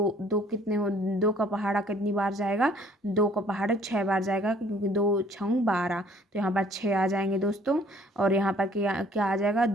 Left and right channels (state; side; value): normal; both; correlation 0.58